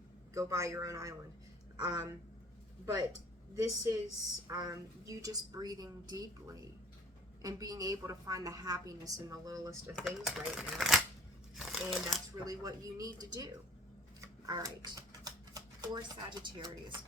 Go buy your own island. But this is you just breathing deeply and being able to find the happiness in the littlest of things right now. And that's really what you need to do. All right. For Sagittarius,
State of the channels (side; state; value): both; normal; correlation 0.52